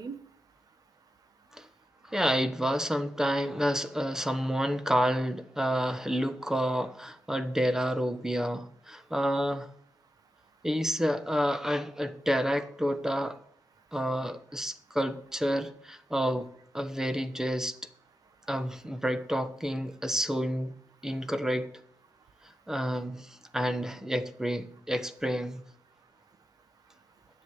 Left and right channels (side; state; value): both; normal; correlation 0.90